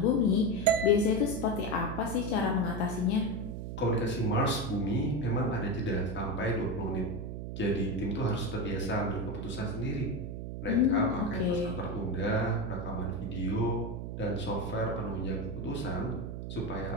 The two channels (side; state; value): right; noise; hum, 6 dB below the sound